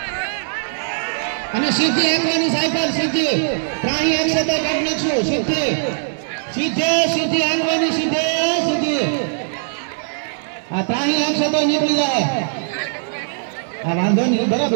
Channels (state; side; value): silent; left; 66 dB below the other